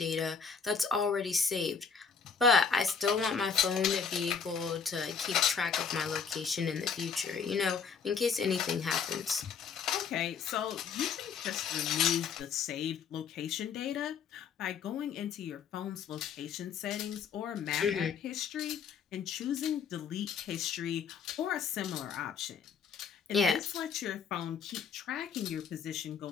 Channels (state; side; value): quieter; right; 6.3 dB